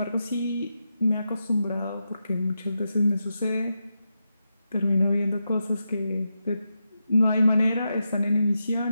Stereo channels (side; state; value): both; inverted; correlation -0.87